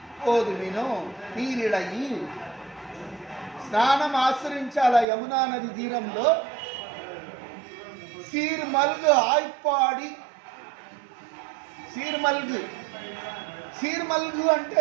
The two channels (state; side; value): drops out; left; at 5.1 s